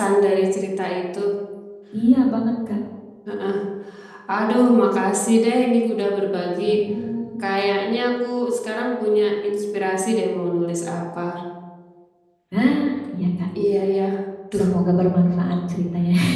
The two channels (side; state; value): both; identical; correlation 1.00